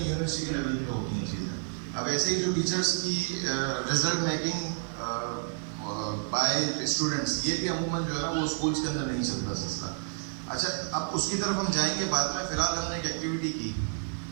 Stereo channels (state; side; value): silent; left; digital silence